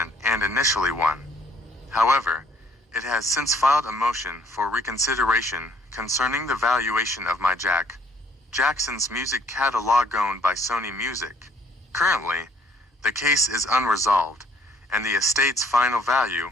and initially won. However, it has since filed a motion for reconsideration concerning the valuation of Jackson's music catalog owned by Sony Music. Currently, the case is unresolved, and the estate's final value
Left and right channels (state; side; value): normal; both; correlation 0.63